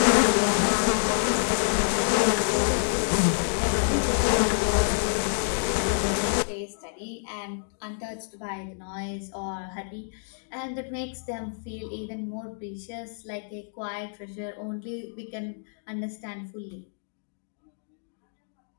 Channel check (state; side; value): silent; right; digital silence